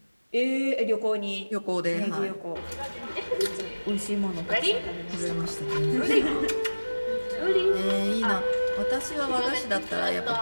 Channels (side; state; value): both; inverted; correlation -1.00